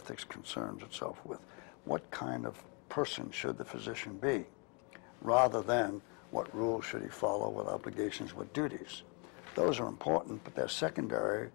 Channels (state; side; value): quieter; right; 34.1 dB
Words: concerns itself with. What kind of person should the physician be, rather than what rules should he follow, what obligations, what duties. Those are important, but they're secondary